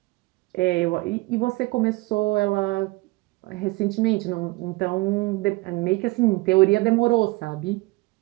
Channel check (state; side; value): quieter; left; 22.6 dB